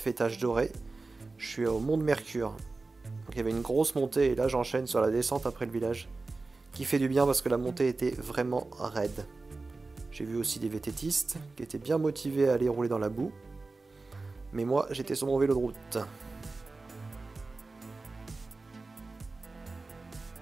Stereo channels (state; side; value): quieter; left; 3.6 dB